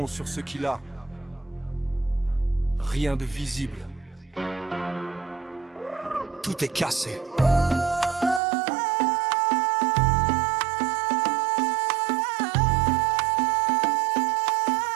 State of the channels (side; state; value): left; drops out; at 8.4 s